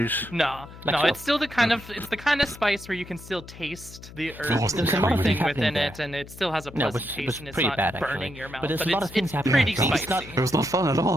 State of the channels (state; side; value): noise; left; hum, 17 dB below the sound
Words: No, Like no, so. it's still the kind of spice where you can still taste the earth there's and a lot of everything things within happening it, and it still has a No, it pleasant was taste, and it's pretty not bad, burning actually. your mouth. But there's a But lot of things it's happening. pretty Yeah, spicy. It was not fun at